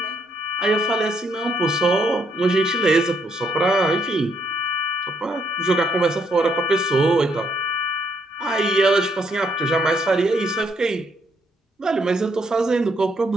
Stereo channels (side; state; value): both; normal; correlation 0.74